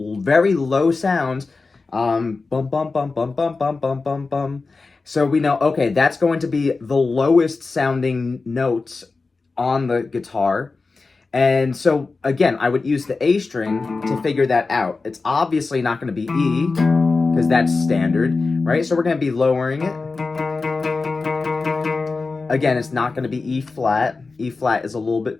low sound, bum, bum, bum, bum, bum, bum, bum, bum, bum. So we know, okay, that's going to be the lowest sounding notes on the guitar. And so, again, I would use the A string to figure that out. It's obviously not going to be E, because that's standard, right? So we're going to be lowering it. Again, it's not going to be E flat. E flat is a little bit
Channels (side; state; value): right; quieter; 4.0 dB